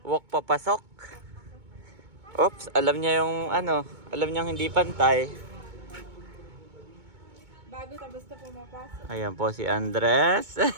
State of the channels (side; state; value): left; late; 2.2 ms